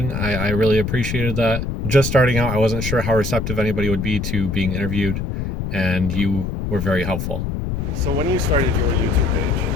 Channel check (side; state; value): left; noise; rumble, 4 dB below the sound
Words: I really appreciated that. Just starting out, I wasn't sure how receptive anybody would be to being interviewed, and you were very helpful. So when you started your YouTube